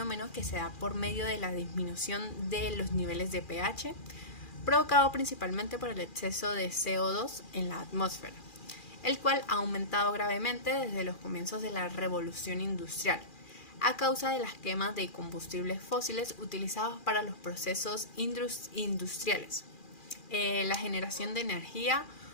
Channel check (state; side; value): late; right; 2.4 ms